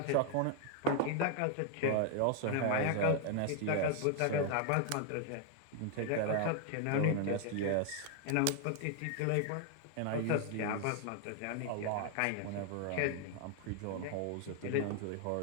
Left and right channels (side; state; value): both; different; correlation 0.00